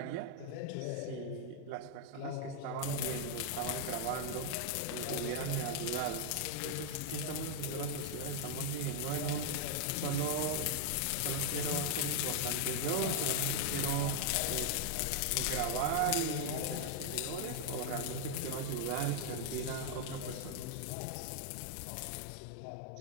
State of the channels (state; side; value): different; both; correlation 0.00